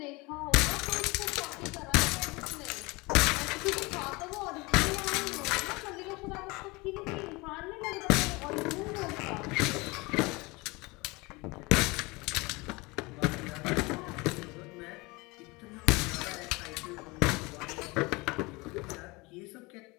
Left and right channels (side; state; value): right; quieter; 24.6 dB